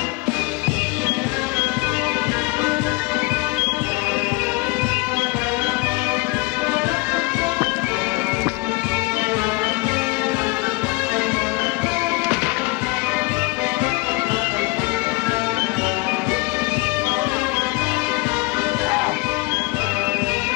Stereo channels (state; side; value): quieter; right; 25.5 dB